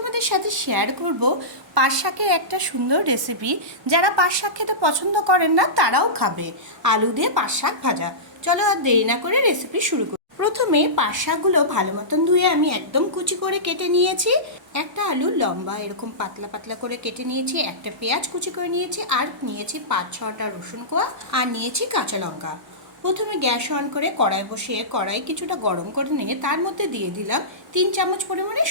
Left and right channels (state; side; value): normal; both; correlation -0.18